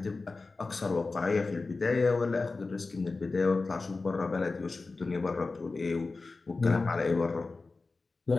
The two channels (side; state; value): right; quieter; 3.8 dB